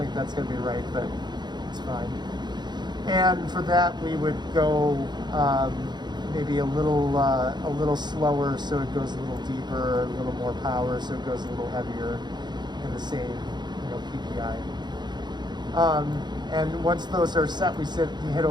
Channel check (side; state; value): left; late; 0.21 ms